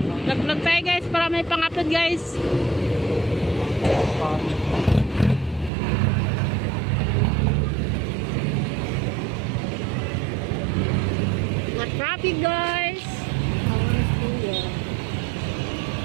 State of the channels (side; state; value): left; drops out; at 5.7 s